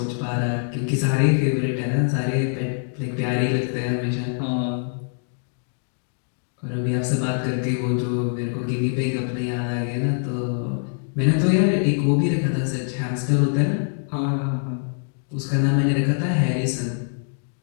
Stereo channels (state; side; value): silent; right; 60 dB below the other